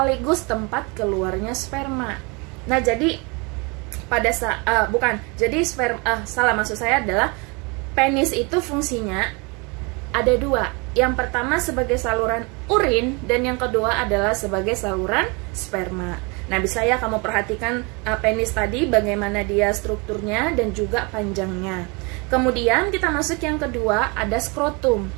tempat keluarnya sperma. Nah, jadi pada maksud saya adalah penis itu fungsinya ada dua. Yang pertama sebagai saluran urin, dan yang kedua adalah sebagai saluran sperma. Nah, bisa ya kamu perhatikan penis tadi bagaimana dia strukturnya dan juga panjangnya. Kemudian kita masuk yang kedua, ada skrotum.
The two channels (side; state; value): left; quieter; 29.7 dB